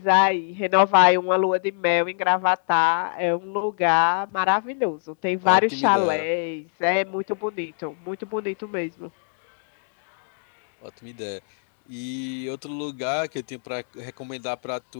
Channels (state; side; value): silent; right; 62 dB below the other